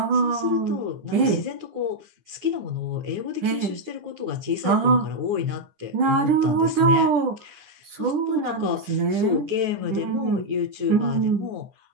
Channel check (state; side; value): late; left; 9.4 ms